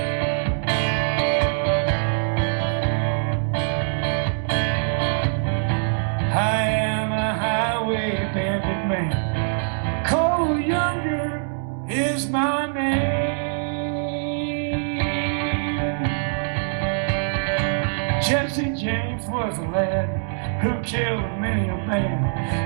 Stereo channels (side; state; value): left; silent; digital silence